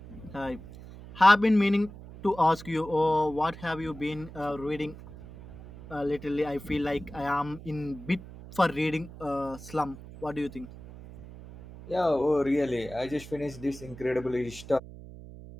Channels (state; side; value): noise; right; hum, 15 dB below the sound